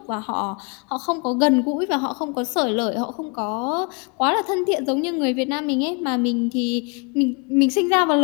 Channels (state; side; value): quieter; right; 33.2 dB